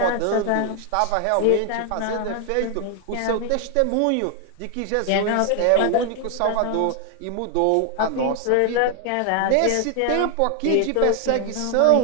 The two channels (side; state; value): both; different; correlation 0.00